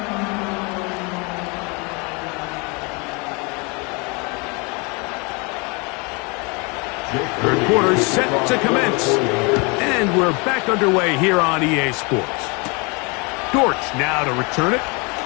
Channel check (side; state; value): right; quieter; 30.2 dB